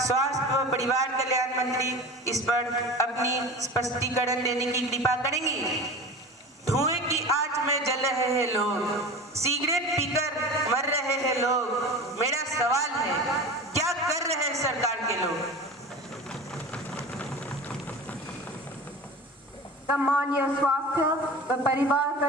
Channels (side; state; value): both; normal; correlation 0.33